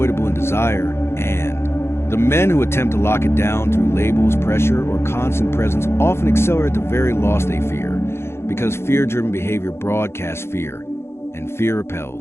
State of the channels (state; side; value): late; right; 0.12 ms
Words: in desire, and the men who attempt to lock it down through labels, pressure, or constant presence often accelerate the very loss they fear, because fear-driven behavior broadcasts fear, and fear